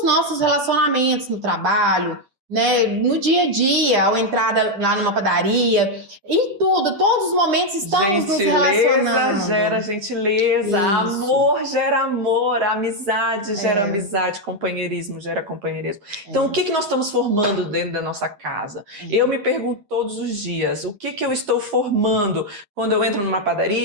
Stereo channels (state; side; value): late; left; 10 ms